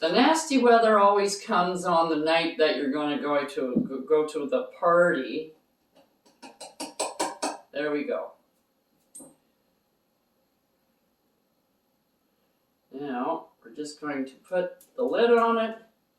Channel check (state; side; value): identical; both; correlation 1.00